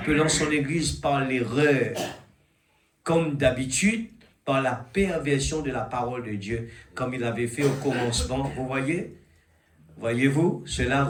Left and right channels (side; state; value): both; identical; correlation 1.00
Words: son Église par l'erreur, comme d'habitude, par la perversion de la parole de Dieu, comme il avait fait au commencement. Vous voyez? Voyez-vous? Cela